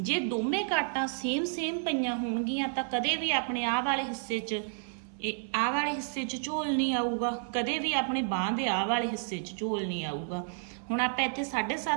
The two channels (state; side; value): silent; left; 57 dB below the other